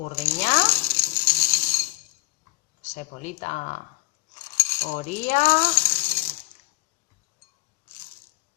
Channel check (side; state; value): right; quieter; 21.0 dB